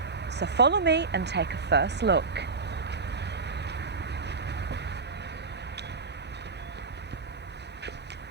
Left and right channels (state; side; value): quieter; left; 4.4 dB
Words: So follow me and take a first look.